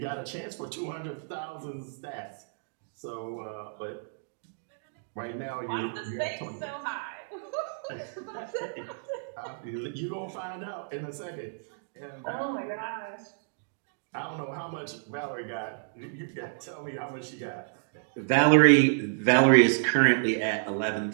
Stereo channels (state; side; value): silent; left; digital silence